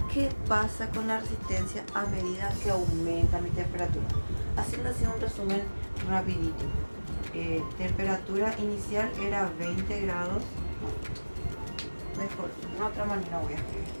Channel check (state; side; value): inverted; both; correlation -1.00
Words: ¿qué pasa con la resistencia a medida que aumenta mi temperatura? Haciendo así un resumen rapidito. Temperatura inicial era 20 grados. Mejor, de otra manera voy a escribir.